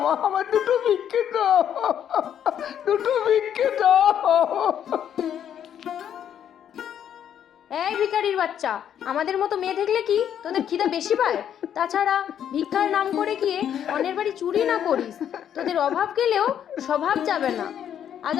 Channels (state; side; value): quieter; right; 9.5 dB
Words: মা, আমার দুটো ভিক্ষে দাও, দুটো ভিক্ষে দাও। এই ভিখারির বাচ্চা, আমাদের মতো মেয়ে দেখলে কি তোদের খিদে বেশি পায়? তাছাড়া ভিক্ষার নাম করে গিয়ে অন্যের বাড়ি চুরি না করিস, তোদের অভাব গেলেও স্বভাব যাবে না। আজ